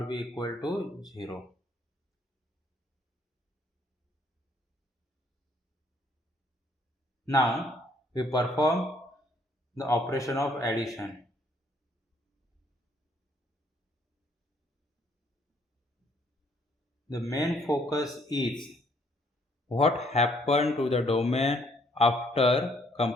be equal to 0. Now we perform the operation of addition. The main focus is what happened to the domain after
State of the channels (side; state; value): both; normal; correlation 0.66